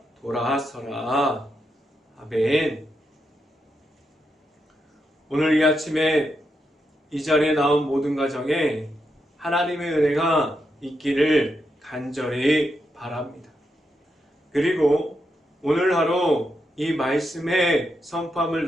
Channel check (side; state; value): both; normal; correlation 0.83